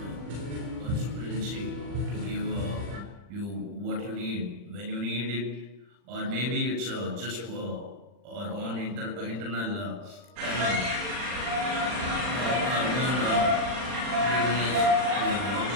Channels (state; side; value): late; left; 40 ms